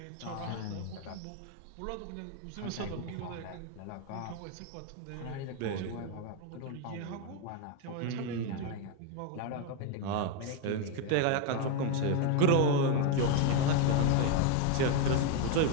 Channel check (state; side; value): different; both; correlation 0.01